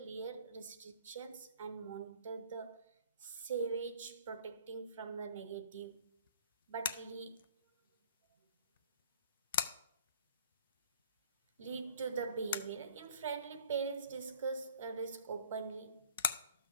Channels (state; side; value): inverted; both; correlation -0.51